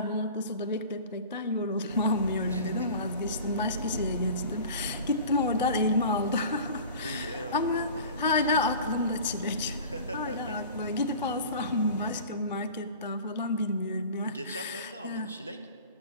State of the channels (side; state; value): both; inverted; correlation -0.39